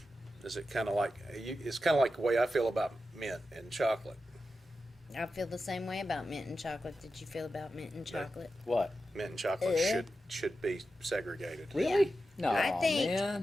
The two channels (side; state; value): both; normal; correlation 0.91